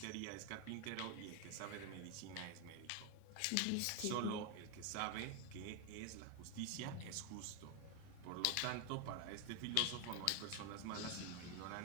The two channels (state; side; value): different; both; correlation 0.01